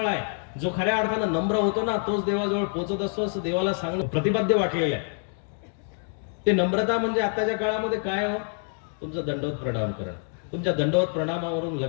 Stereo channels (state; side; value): silent; right; 56 dB below the other